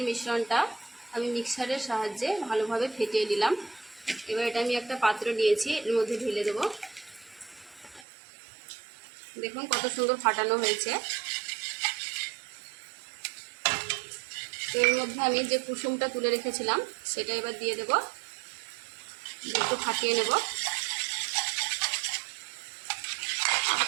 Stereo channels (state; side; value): drops out; left; at 8.1 s